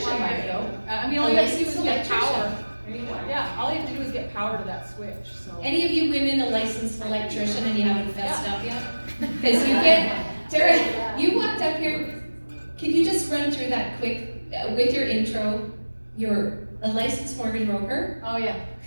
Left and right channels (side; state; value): both; inverted; correlation -1.00